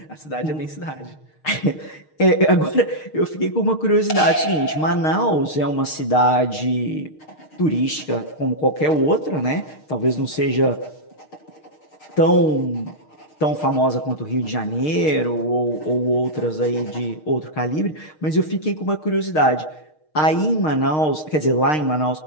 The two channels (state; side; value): late; right; 6.5 ms